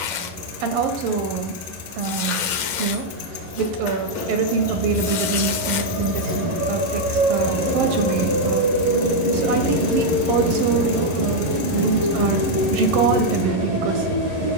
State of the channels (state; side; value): late; left; 10 ms